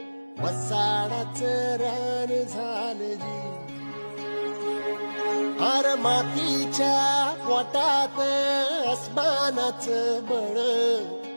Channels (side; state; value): both; inverted; correlation -1.00